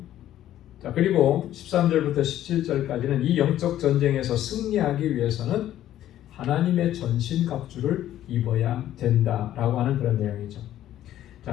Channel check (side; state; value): right; quieter; 12.5 dB